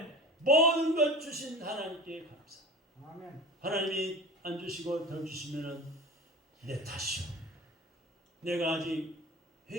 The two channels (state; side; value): normal; both; correlation 0.35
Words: 모든 것 주신 하나님께 감사. 아멘. 하나님이 안 주시고 더 주시면은 내 탓이요. 내가 아직